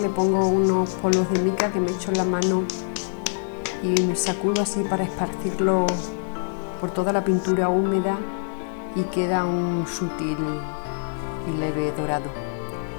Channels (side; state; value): right; silent; 62 dB below the other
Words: le pongo unos polvos de mica que me echo en la mano y me sacudo así para esparcirlo por toda la pintura húmeda y queda un sutil y leve dorado.